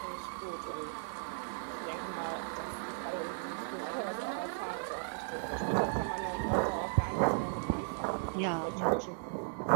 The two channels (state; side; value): silent; left; digital silence